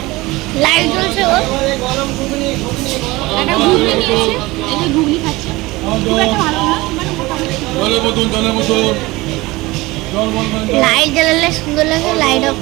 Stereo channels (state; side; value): quieter; left; 20.9 dB